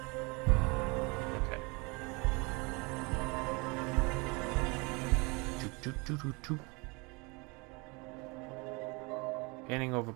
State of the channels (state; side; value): quieter; left; 28.2 dB